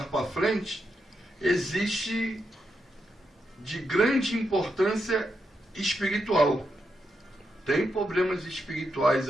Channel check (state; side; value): normal; both; correlation 0.84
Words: para frente, existe de grande importância espiritual. Tem problemas espirituais